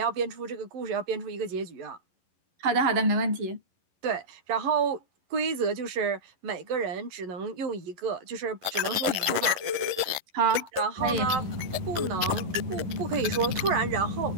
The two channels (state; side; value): late; left; 11 ms